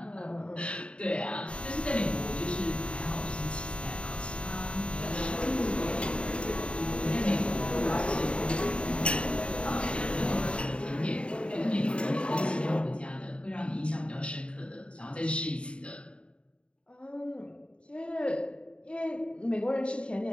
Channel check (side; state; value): right; late; 0.057 ms